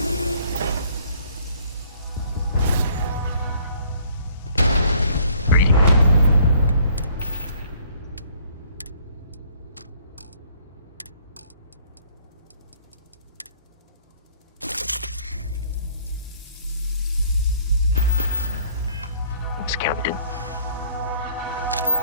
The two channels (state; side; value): inverted; both; correlation -0.59